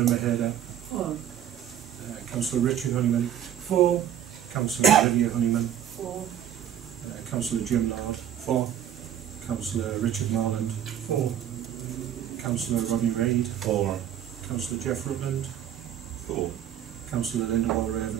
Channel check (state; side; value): quieter; left; 10.2 dB